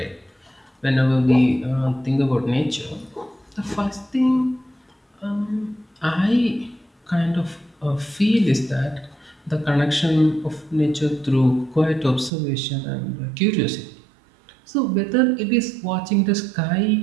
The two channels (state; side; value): drops out; left; at 12.3 s